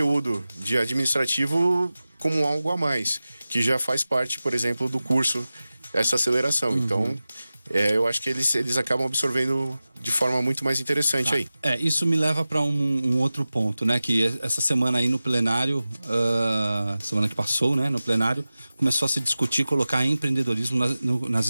de administrativo como algo a mais, que já faz parte, por exemplo, do curso, essa aceleração. Então, eu acho que eles acabam absorvendo de forma muito mais interessante aí. Isso me leva para um outro ponto, né? Que essa semana aí no plenário, semana que passou, né? No plenário, começou a se discutir colocar empreendedorismo nas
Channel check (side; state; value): both; inverted; correlation -0.96